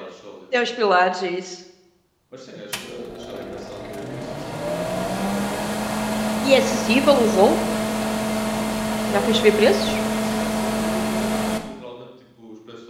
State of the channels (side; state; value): both; identical; correlation 1.00